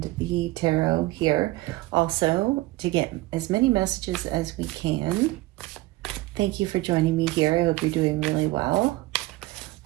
the tarot here also to get as many messages as we can. Thank you for joining me here. I hope you're doing really well.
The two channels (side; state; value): left; quieter; 19.4 dB